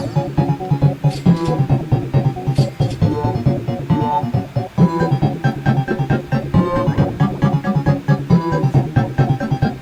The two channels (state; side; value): identical; both; correlation 1.00